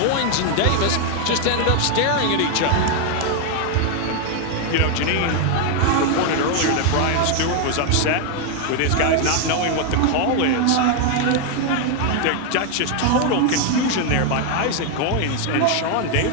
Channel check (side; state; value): both; different; correlation 0.00